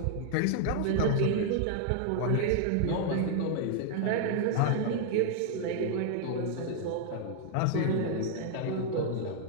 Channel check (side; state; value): both; different; correlation 0.00